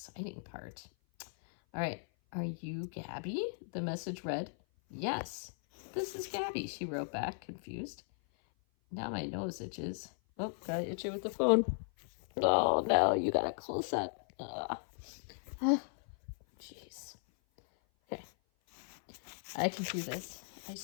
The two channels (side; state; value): right; silent; 53 dB below the other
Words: part. All right. Are you Gabby? The message read. Yes. This is Gabby, she wrote back, confused. Now my nose itches. Oh, gotta itch it with the phone. Oh, no, you gotta close up. Jeez. Okay. I can do this. I